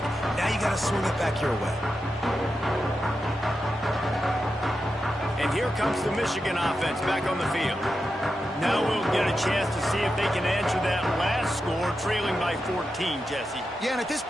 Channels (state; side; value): normal; both; correlation 0.89